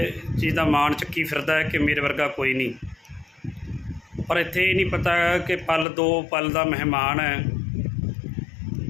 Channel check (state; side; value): drops out; right; at 5.9 s